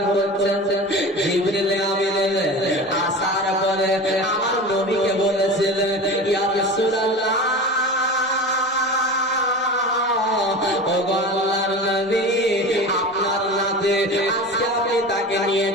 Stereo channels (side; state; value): both; normal; correlation 0.32